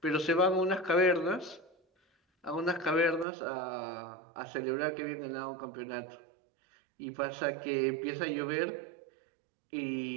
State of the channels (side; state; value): left; drops out; at 3.2 s